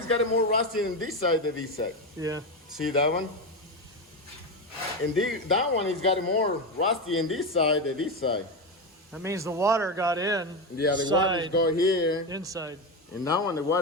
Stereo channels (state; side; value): normal; both; correlation 0.15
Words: got more rusty on this side than this side. Yeah. See that one? And that one is got more rusty in this side than this side. That means the water got in. Yeah, the water is go here. Inside. And now on the